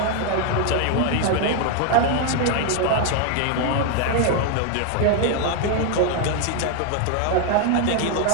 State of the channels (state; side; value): different; both; correlation 0.01